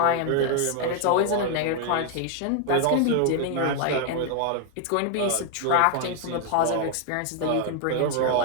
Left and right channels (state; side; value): different; both; correlation 0.00